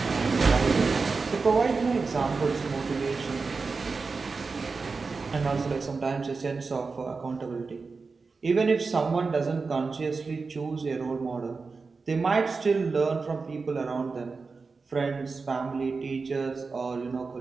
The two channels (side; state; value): left; quieter; 4.4 dB